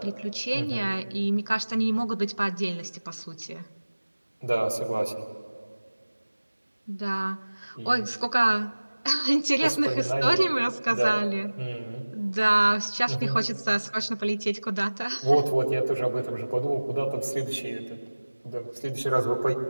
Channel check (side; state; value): both; inverted; correlation -1.00